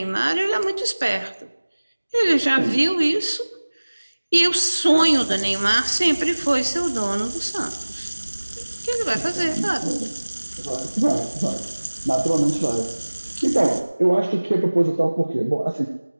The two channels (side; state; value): both; inverted; correlation -1.00